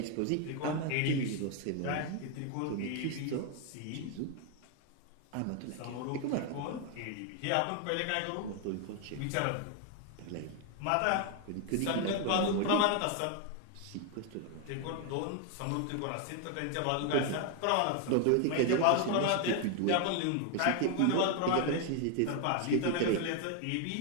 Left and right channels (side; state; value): both; different; correlation 0.01